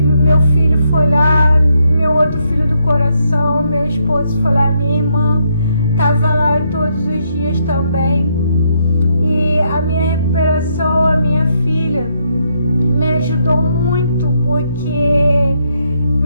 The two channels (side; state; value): both; inverted; correlation -0.76